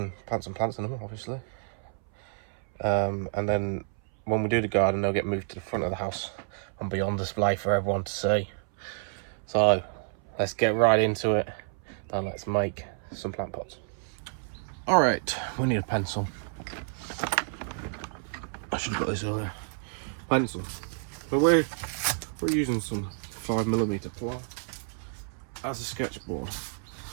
plant some plants in them, obviously. And then when we do the garden, they'll get moved to the front of the house and be on display for everyone to see. So let's get right into it and let's make some plant pots. All right, we need a pencil. I should have got this earlier. Pencil. But we're using some 5mm ply as a sketchboard.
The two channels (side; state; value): left; silent; 58 dB below the other